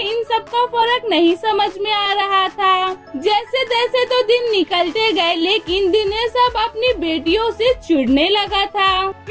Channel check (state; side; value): identical; both; correlation 1.00